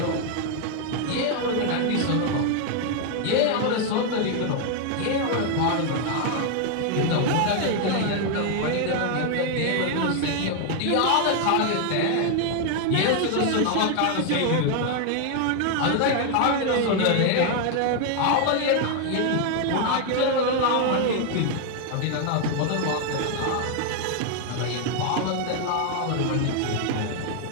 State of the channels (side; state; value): both; different; correlation 0.00